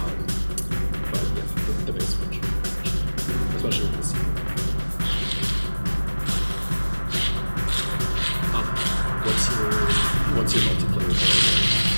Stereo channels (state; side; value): inverted; both; correlation -1.00